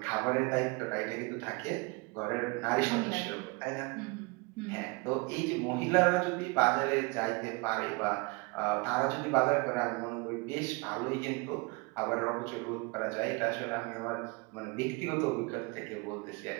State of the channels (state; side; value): quieter; left; 28.4 dB